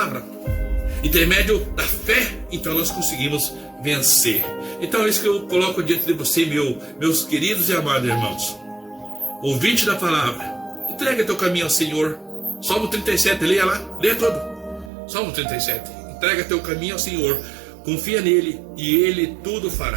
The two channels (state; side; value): drops out; left; at 14.9 s